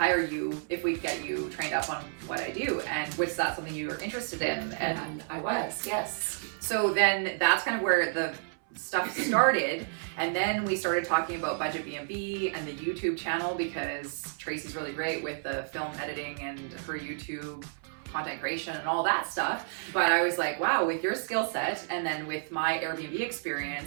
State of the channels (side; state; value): left; silent; 57 dB below the other